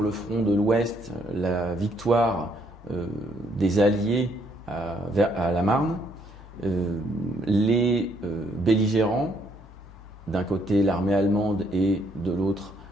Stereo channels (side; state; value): both; normal; correlation 0.69